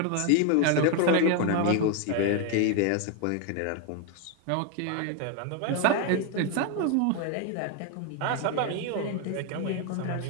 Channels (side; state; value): both; different; correlation 0.01